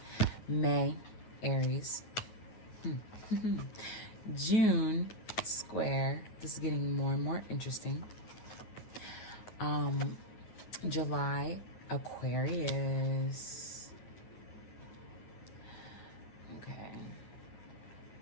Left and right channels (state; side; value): late; right; 9.3 ms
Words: May, Aries. June, square. This is getting more and more interesting. July, Aquarius. Okay.